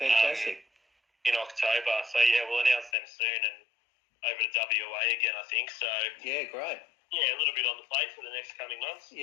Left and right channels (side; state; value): right; drops out; at 2.9 s